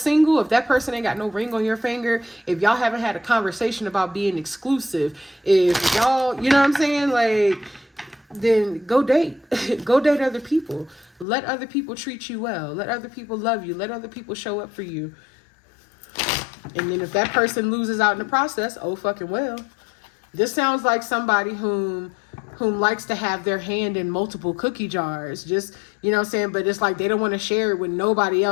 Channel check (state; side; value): drops out; right; at 11.2 s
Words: if that person ain't got no ring on your finger, if y'all haven't had a conversation about being exclusive, if y'all, you know what I'm saying? Like, then go date. Go date other people. Let other people treat you well. Let other people love you. Let other people show up for you. And then if that person loses out in the process, oh fucking well. This sounds like somebody whom likes to have their hand in multiple cookie jars. Just, you know what I'm saying? But it's like they don't want to share it with nobody